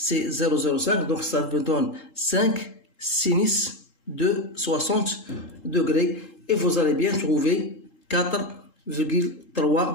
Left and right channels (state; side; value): late; right; 3.8 ms